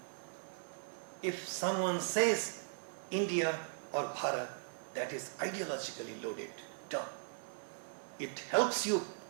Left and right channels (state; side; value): silent; left; 52 dB below the other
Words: If someone says India or Bharat, that is ideologically loaded term. It helps you